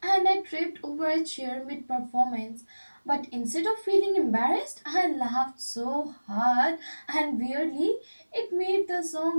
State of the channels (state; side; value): inverted; both; correlation -1.00